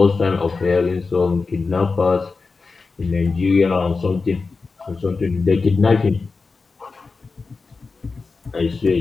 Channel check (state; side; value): quieter; right; 4.2 dB